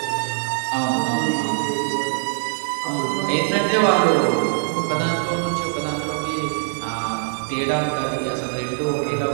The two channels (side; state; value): left; silent; 64 dB below the other